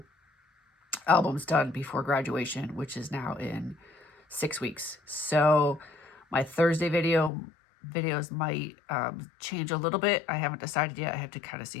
albums done before graduation, which is now in 6 weeks. So my Thursday video videos might change a little bit. I haven't decided yet. I have to kind of see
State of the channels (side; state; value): right; drops out; at 7.3 s